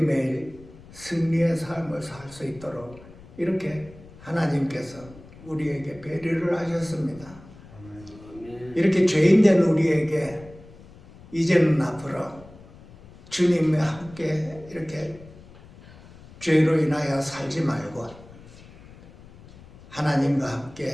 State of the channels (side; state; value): left; noise; rumble, 21 dB below the sound